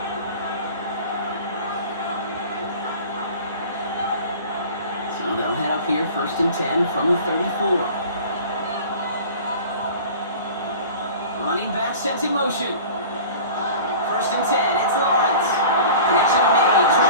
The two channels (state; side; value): inverted; both; correlation -0.41